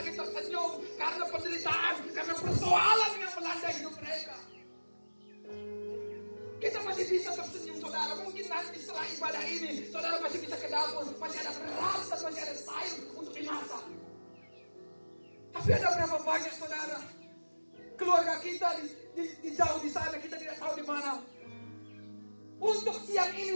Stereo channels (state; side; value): inverted; both; correlation -1.00